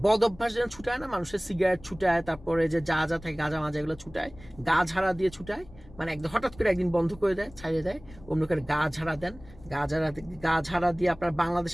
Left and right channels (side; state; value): left; noise; rumble, 20 dB below the sound